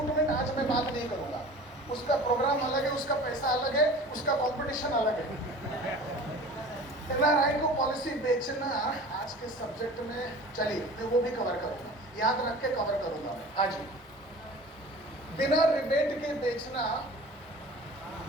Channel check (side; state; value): both; normal; correlation 0.41